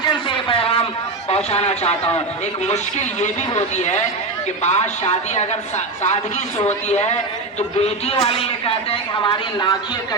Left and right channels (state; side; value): quieter; left; 3.3 dB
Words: سے یہ پیغام پہنچانا چاہتا ہوں. ایک مشکل یہ بھی ہوتی ہے کہ بعض شادی اگر سادگی سے ہوتی ہے تو بیٹی والے یہ کہتے ہیں کہ ہماری ناکیں